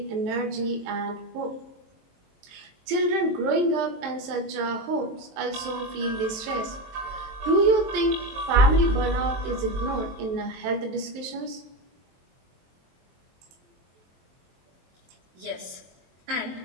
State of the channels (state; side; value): late; left; 23 ms